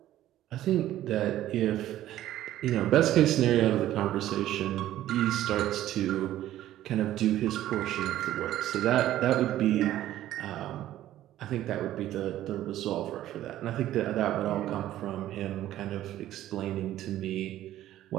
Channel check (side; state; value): left; quieter; 13.4 dB